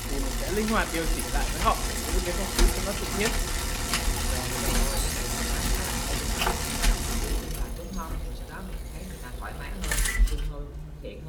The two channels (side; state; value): both; identical; correlation 1.00